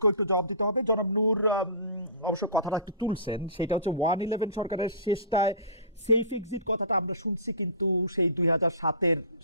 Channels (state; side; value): inverted; both; correlation -0.36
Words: একটু জবাব দিতে হবে। জনাব নূর অবশ্য কথাটা একটু তুলছেন, সেটা হচ্ছে 111 সরকারের শেষটায় সেফ এক্সিট কথাটা আমরা শুনছি, কিন্তু সেই 2007-এর